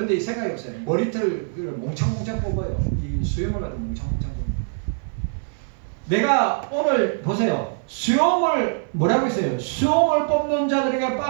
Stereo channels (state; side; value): silent; left; 59 dB below the other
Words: 이 생각이 없어요. 머리털을 몽창몽창 뽑아요. 이 수염을 가지고 몽창몽창 뽑아요. 내가 오늘 보세요. 수염을 뭐라고 했어요? 수염을 뽑는 자들에게